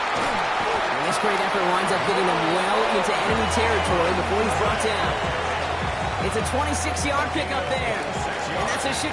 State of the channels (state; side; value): identical; both; correlation 1.00